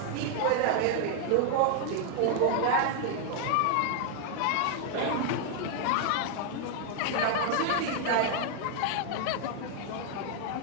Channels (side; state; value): both; different; correlation 0.00